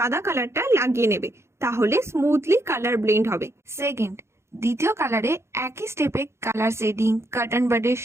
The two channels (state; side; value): late; left; 0.13 ms